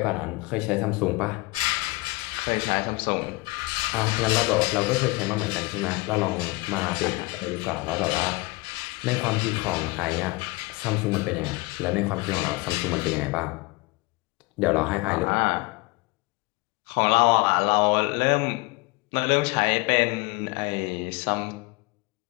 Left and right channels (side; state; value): right; quieter; 24.4 dB